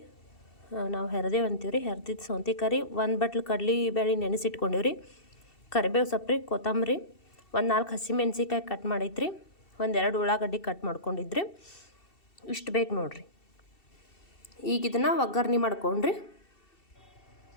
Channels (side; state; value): right; late; 2.7 ms